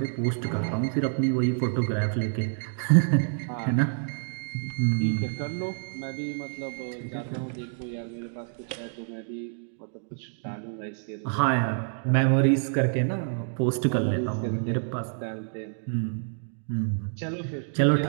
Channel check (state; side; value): silent; left; digital silence